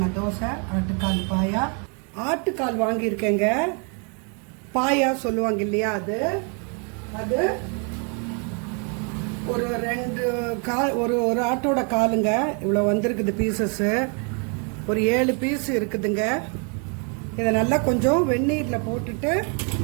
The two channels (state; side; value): quieter; left; 37.7 dB